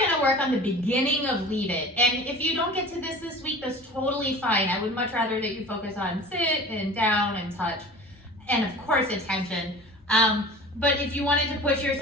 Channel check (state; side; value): normal; both; correlation 0.39